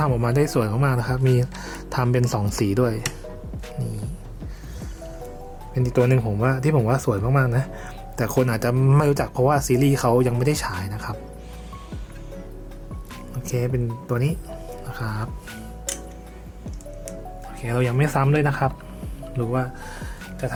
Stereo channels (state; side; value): identical; both; correlation 1.00